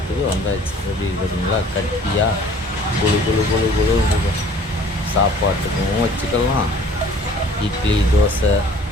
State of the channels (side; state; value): both; normal; correlation 0.52